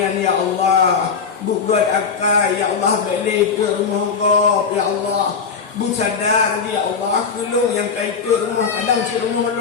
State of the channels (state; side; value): quieter; right; 5.7 dB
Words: ya Allah. Buat akal ya Allah balik ke rumah kau ya Allah. Bu sadar ya Allah kelung yang kait rumah kadang si rumah